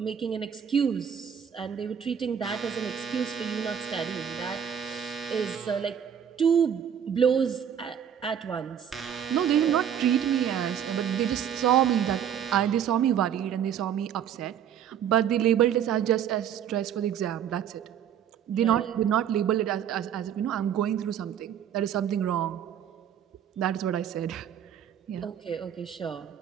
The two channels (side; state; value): left; quieter; 8.9 dB